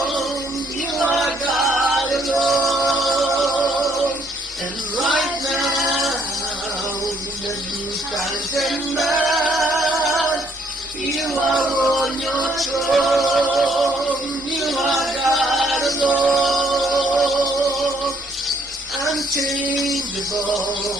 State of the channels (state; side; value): normal; both; correlation 0.68